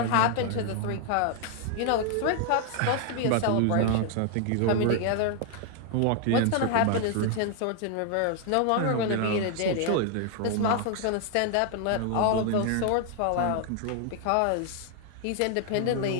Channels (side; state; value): both; different; correlation 0.00